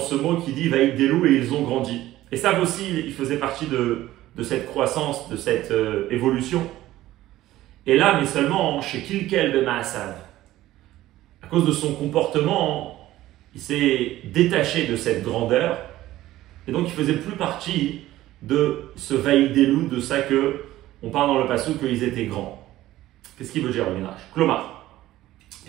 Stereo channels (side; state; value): left; quieter; 15.3 dB